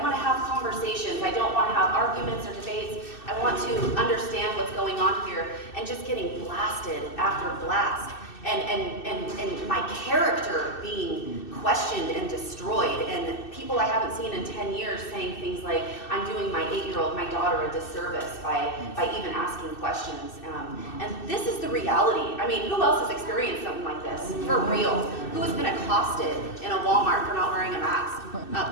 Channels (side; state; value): right; late; 2.6 ms